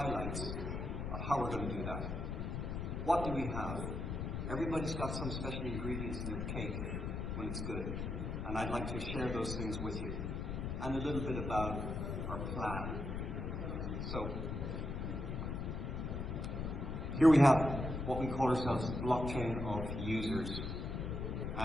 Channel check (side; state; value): left; noise; rumble, 3 dB below the sound